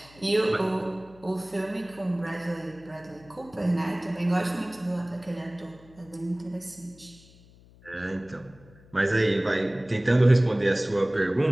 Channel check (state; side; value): noise; left; hum, 25 dB below the sound